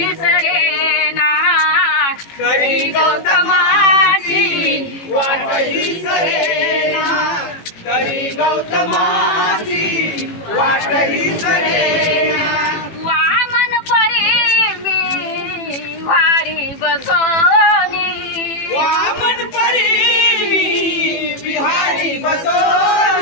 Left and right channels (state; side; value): late; right; 18 ms